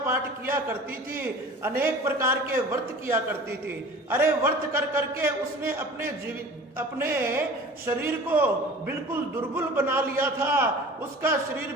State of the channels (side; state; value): both; normal; correlation 0.41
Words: किया करती थी, अनेक प्रकार के व्रत किया करती थी। अरे व्रत कर करके उसने अपने शरीर को बिल्कुल दुर्बल बना लिया था, उसका शरीर